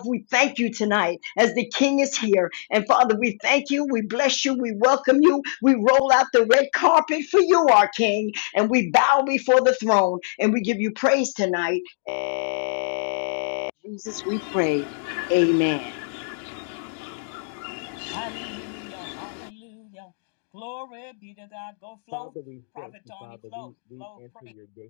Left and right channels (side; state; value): right; silent; digital silence